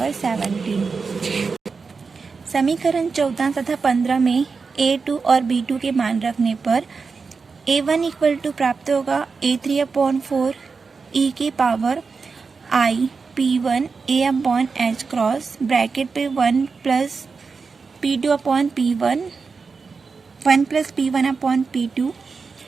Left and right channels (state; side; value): quieter; left; 4.8 dB